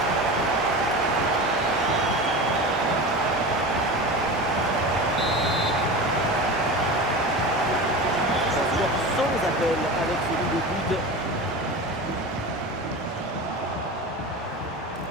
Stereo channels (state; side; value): normal; both; correlation 0.29